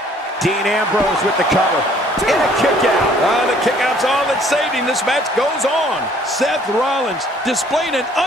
Dean Ambrose with the cover. And a kick out. The kick out's all that saved him. This match goes on. Seth Rollins displaying an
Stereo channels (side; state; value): both; normal; correlation 0.59